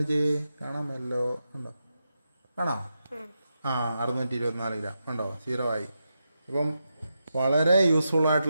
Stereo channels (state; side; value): inverted; both; correlation -0.87